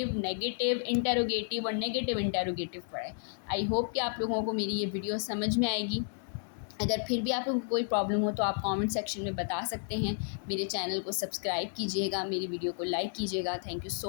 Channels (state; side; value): silent; right; digital silence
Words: नेगेटिव इंटेरोगेटिव और नेगेटिव इंटेरोगेटिव पढ़ाए। आई होप कि आप लोगों को मेरी ये वीडियो समझ में आएगी। अगर फिर भी आप लोगों को कोई प्रॉब्लम हो तो आप कमेंट सेक्शन में बता सकते हैं। मेरे चैनल को सब्सक्राइब कीजिएगा, मेरी वीडियो को लाइक कीजिएगा। Thank you